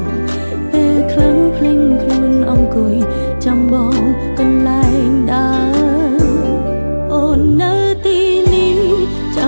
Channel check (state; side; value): inverted; both; correlation -1.00